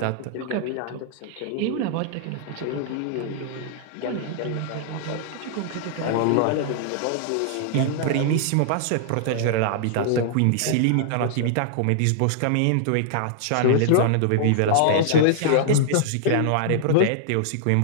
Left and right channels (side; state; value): both; different; correlation -0.01